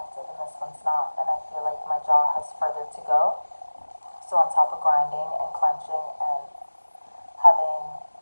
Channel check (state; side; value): inverted; both; correlation -1.00